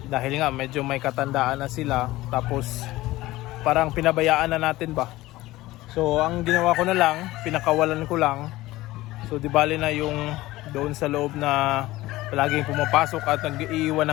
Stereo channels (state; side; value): quieter; right; 17.8 dB